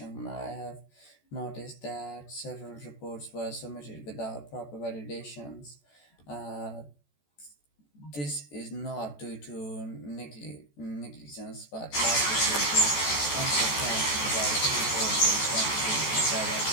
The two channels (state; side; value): late; right; 14 ms